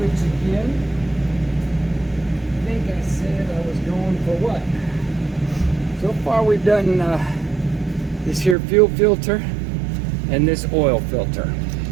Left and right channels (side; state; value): left; drops out; at 8.6 s